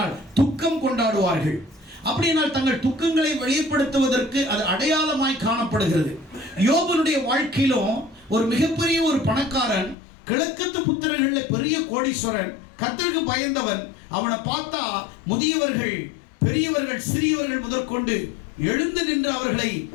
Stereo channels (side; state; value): right; drops out; at 10.0 s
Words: துக்கம் கொண்டாடுவார்கள். அப்படினால் தங்கள் துக்கங்களை வெளிப்படுத்துவதற்கு அது அடையாளமாய் காணப்படுகிறது. யோபனுடைய வாழ்க்கையிலும் ஒரு மிகப்பெரிய ஒரு பணக்காரன், கிழக்கத்து புத்திரர்களில் பெரிய கோடீஸ்வரன், கர்த்தருக்கு பயந்தவன். அவனை பார்த்தா முதியவர்கள், பெரியவர்கள், சிறியவர்கள் முதற்கொண்டு எழுந்து நின்று அவர்களை